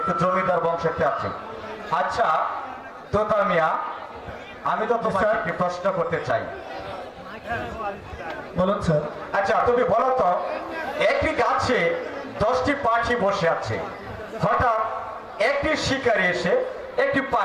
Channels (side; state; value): both; identical; correlation 1.00